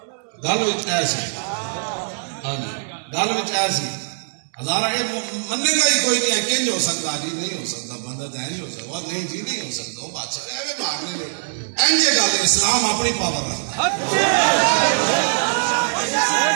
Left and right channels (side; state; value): left; silent; 64 dB below the other